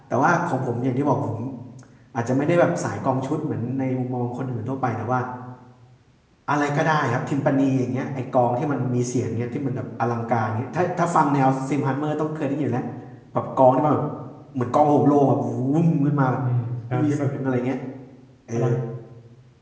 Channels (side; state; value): both; identical; correlation 1.00